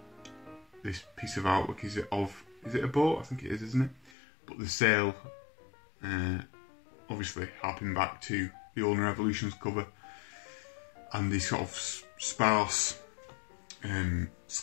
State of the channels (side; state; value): right; drops out; at 4.1 s